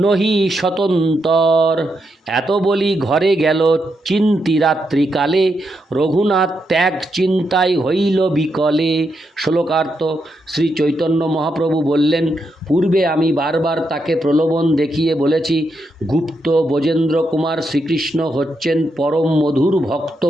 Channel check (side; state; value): both; normal; correlation 0.82